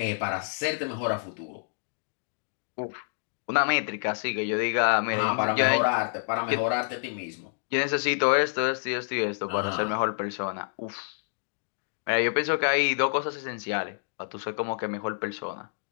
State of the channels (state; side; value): silent; right; digital silence